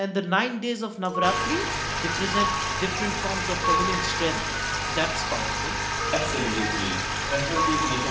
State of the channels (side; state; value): both; identical; correlation 1.00